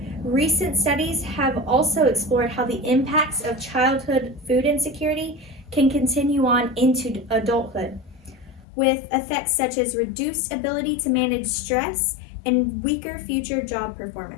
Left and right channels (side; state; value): right; drops out; at 8.7 s